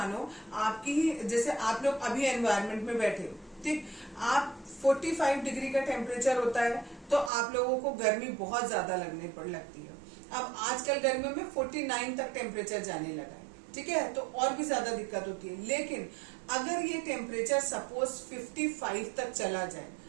आपकी जैसे आप लोग अभी एनवायरनमेंट में बैठे हो, ठीक, आप 45 डिग्री का टेम्परेचर होता है तो आप लोगों को गर्मी बहुत ज्यादा लगती है। अब आजकल गर्मियों में 49 तक टेम्परेचर जाने लगा है, ठीक है, तो और भी ज्यादा दिक्कत होती है। लेकिन अगर ये टेम्परेचर सपोज 55 तक चला जाए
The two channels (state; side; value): drops out; left; at 7.3 s